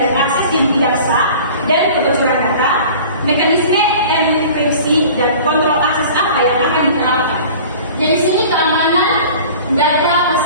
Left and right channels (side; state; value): both; inverted; correlation -0.43